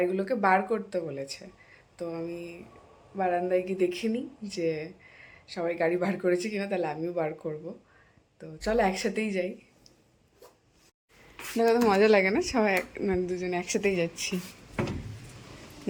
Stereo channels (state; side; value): identical; both; correlation 1.00